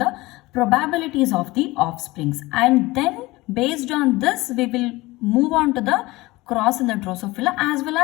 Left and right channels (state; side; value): quieter; right; 20.5 dB